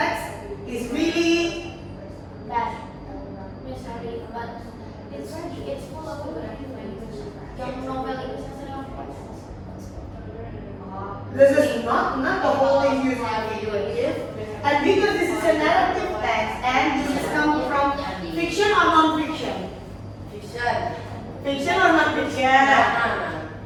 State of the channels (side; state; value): both; identical; correlation 1.00